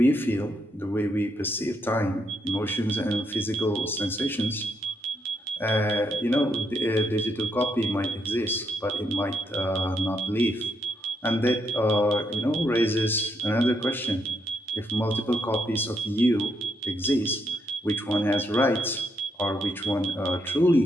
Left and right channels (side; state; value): both; normal; correlation 0.78